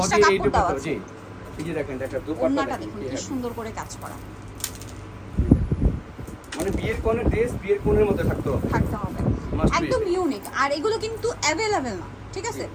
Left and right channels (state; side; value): identical; both; correlation 1.00